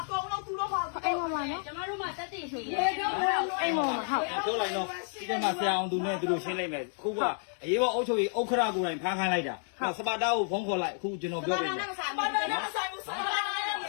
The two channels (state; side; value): silent; right; 57 dB below the other